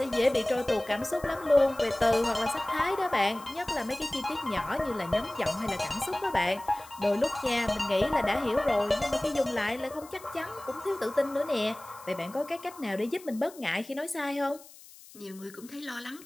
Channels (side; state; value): left; noise; hiss, 20 dB below the sound